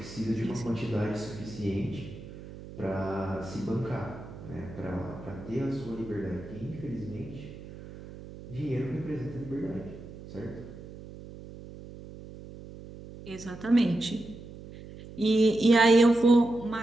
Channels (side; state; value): right; noise; hum, 15 dB below the sound